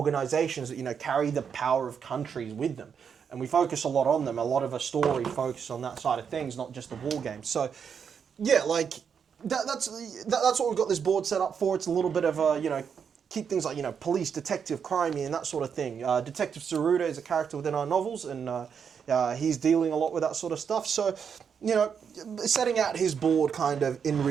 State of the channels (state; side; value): quieter; left; 7.0 dB